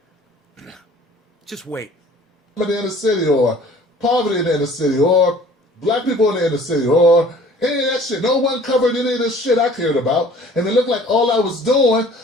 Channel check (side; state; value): both; normal; correlation 0.50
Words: Just wait. In the inner city, or poverty in the inner city, or black people in the inner city, or any of that shit. No one covered any of this shit I cared about. And it looked like all I was doing